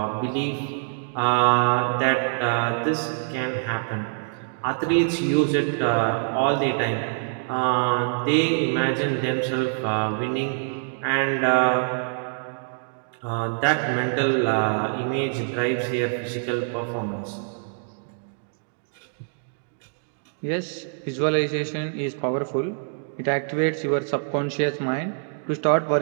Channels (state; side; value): silent; left; digital silence